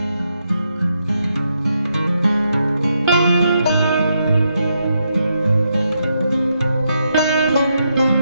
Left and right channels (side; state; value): both; inverted; correlation -0.81